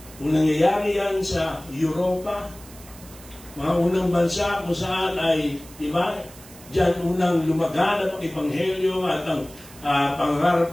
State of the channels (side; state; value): right; noise; hiss, 20 dB below the sound